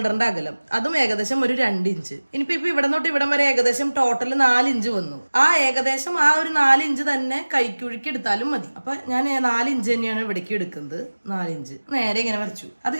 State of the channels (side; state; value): both; inverted; correlation -1.00